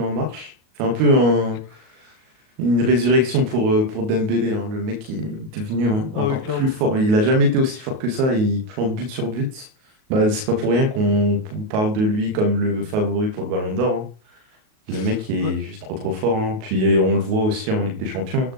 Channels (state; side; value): late; left; 38 ms